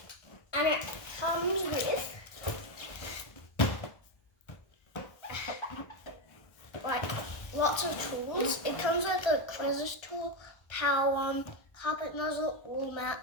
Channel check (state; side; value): late; right; 1.3 ms